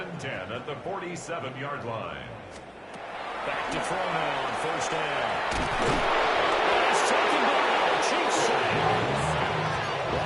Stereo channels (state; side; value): identical; both; correlation 1.00